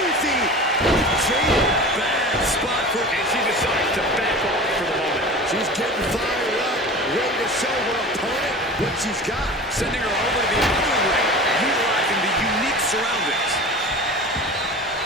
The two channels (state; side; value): normal; both; correlation 0.36